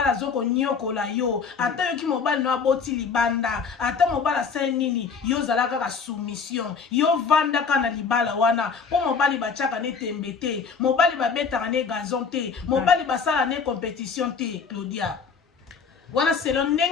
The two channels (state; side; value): quieter; right; 5.7 dB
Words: azokonyokola yo ata yoki mobali no aboti libanda ata mobali asali nini yo ozala kaka soumission yo vandaka na libala wana mpo mobali batiaka ne tembe te mobali babetaka ne gazon te mobali basala ne compétition te Claudia wana selon